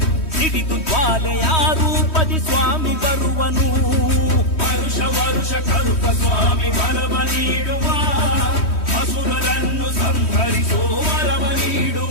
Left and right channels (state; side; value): late; right; 3.1 ms